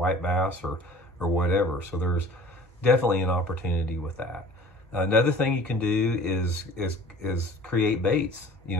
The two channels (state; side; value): normal; both; correlation 0.46